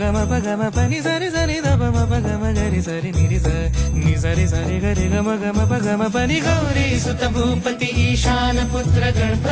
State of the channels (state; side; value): identical; both; correlation 1.00